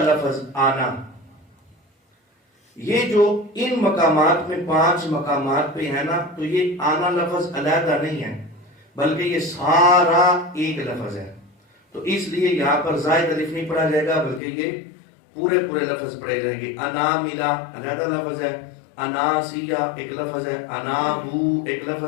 لفظ آنا۔ یہ جو ان مقامات میں 5 مقامات پہ ہے نا، تو یہ آنا لفظ علیحدہ نہیں ہے بلکہ یہ سارا ایک لفظ ہے، تو اس لیے یہاں پر زائد الف نہیں پڑھا جائے گا بلکہ یہ پورے لفظ پڑھے جائیں گے۔ اناملا علیحدہ لفظ ہے، اناسیہ ایک لفظ ہے، انابو ایک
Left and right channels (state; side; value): drops out; right; at 14.4 s